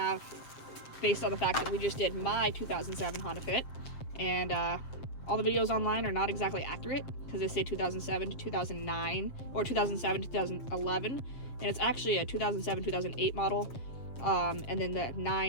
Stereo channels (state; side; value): late; right; 7.5 ms